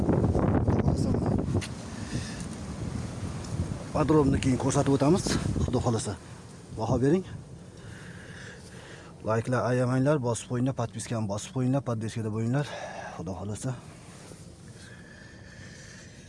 Podrobni keyin ko'rsatib o'tamiz. Xudo xolasa. Baho bering. Like'lar ayamanglar, bosib qo'yinglar, podpiskani bosib qo'yinglar, podpiskada bo'linglar. Xudo xolasa.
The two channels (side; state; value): both; identical; correlation 1.00